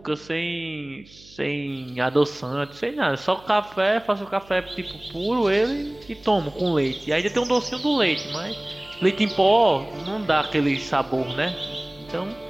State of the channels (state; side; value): noise; right; hum, 25 dB below the sound